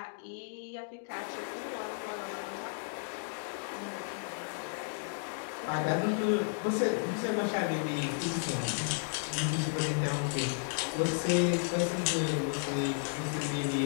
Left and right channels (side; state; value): right; silent; digital silence